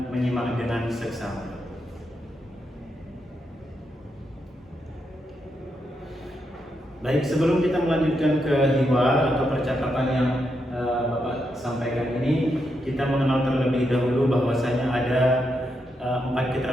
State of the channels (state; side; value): normal; both; correlation 0.83